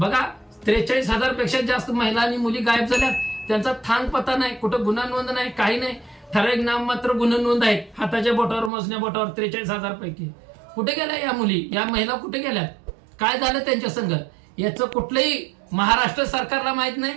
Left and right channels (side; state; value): left; drops out; at 8.7 s